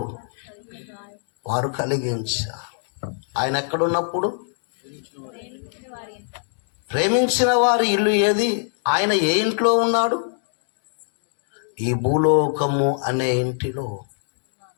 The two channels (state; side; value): silent; right; digital silence